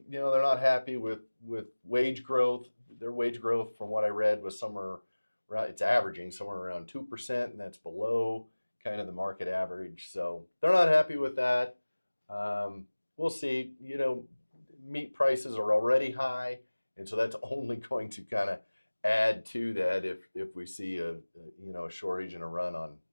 they're not happy with wage growth. Their wage growth, from what I read, was somewhere around, it's averaging somewhere around 2%, and that's below kind of the market average. So they're not happy with that. We'll see. Meat prices are already high, and so that's only going to kind of add to that if we see a shortage and a run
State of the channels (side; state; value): both; inverted; correlation -1.00